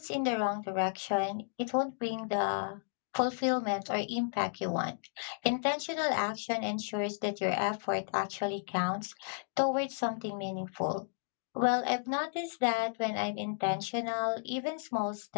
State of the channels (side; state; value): right; silent; digital silence